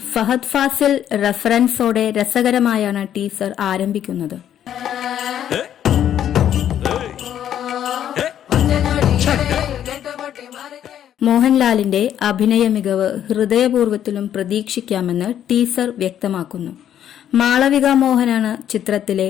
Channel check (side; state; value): right; quieter; 10.3 dB